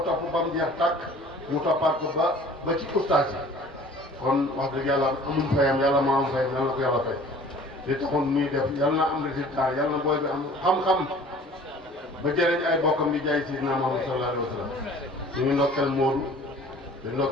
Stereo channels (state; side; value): normal; both; correlation 0.48